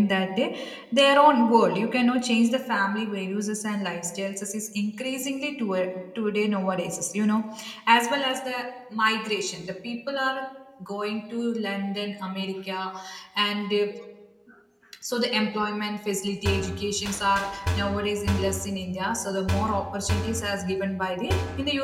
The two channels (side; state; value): both; identical; correlation 1.00